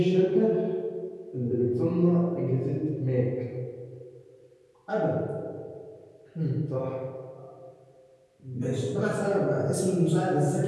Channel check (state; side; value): identical; both; correlation 1.00